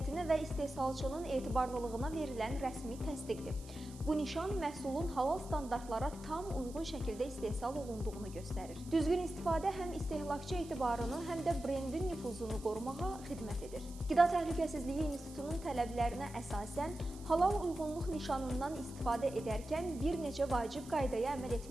və istehsalçının etibarlılığına verilən rəsmi təsdiqdir. Bu nişan məhsulun halal standartlara tam uyğun şəkildə istehsal olunduğunu göstərir. Düzgün istifadə həm istehlakçı etibarını, həm də brendin nüfuzunu qorumağa xidmət edir. Qida Təhlükəsizliyi İnstitutunun tələblərinə əsasən halal uyğunluq nişanından istifadə edərkən bir neçə vacib qaydaya əməl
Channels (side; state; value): right; noise; hiss, 20 dB below the sound